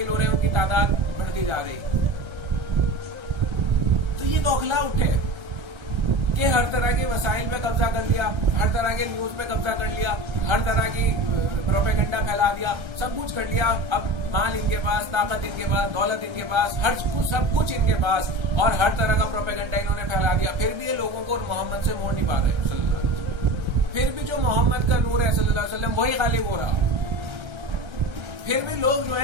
ہو رہے ہیں ان کی تعداد بڑھتی جا رہی. تو یہ بوکھلا اٹھے کہ ہر طرح کے وسائل پہ قبضہ کر لیا، ہر طرح کے نیوز پہ قبضہ کر لیا، ہر طرح کی پروپیگنڈا پھیلا دیا، سب کچھ کر لیا. اب مال ان کے پاس، طاقت ان کے پاس، دولت ان کے پاس، ہر کچھ سب کچھ ان کے پاس، اور ہر طرح کا پروپیگنڈا انہوں نے پھیلا دیا. پھر بھی یہ لوگوں کو محمد سے موڑ نہیں پا رہے صلی اللہ علیہ وسلم. پھر بھی جو محمد کا نور ہے صلی اللہ علیہ وسلم وہی غالب ہو رہا. پھر بھی لوگ جو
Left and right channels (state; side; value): late; left; 1.3 ms